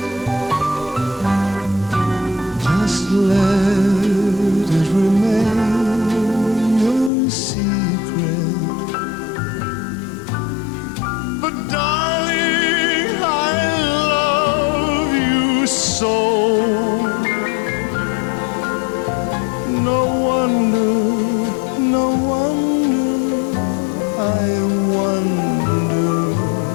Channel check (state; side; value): drops out; right; at 7.1 s